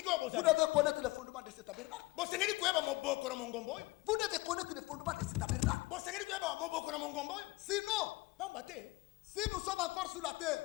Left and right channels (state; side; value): quieter; right; 21.8 dB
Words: devez connaître le fondement de cet tabernacle. Vous devez connaître le fondement de cet tabernacle. Sinon, si nous sommes encore sur la